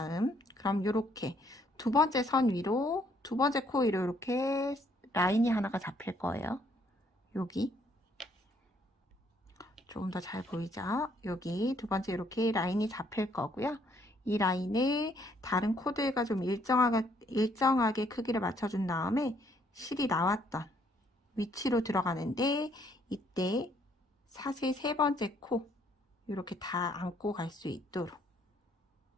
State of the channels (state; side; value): normal; both; correlation 0.67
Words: 그럼 이렇게 두 번째 선 위로 두 번째 코 위로 이렇게 라인이 하나가 잡힐 거예요. 여기 조금 더 잘 보이죠? 여기 두 번째 이렇게 라인이 잡힐 거고요. 이 라인을 다른 코들과 좀 일정하게 크기를 맞춰준 다음에 실이 나왔던 위치로 들어가는데 이때 사슬 세 번째 코 이렇게 다 안고 갈 수 있도록